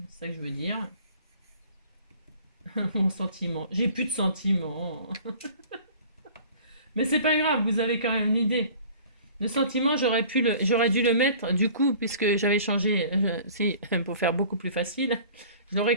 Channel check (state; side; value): inverted; both; correlation -0.47